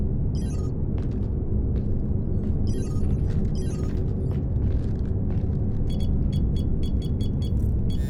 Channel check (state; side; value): identical; both; correlation 1.00